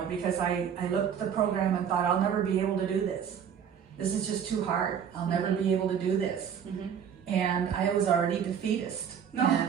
because I looked at the program and thought, I'll never be able to do this. This is just too hard. I'll never be able to do this. And I was already defeatist. No.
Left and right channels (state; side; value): quieter; left; 8.0 dB